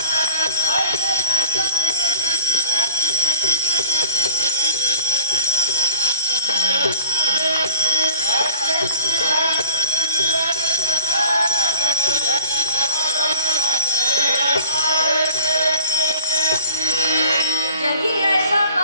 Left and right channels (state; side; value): inverted; both; correlation -0.47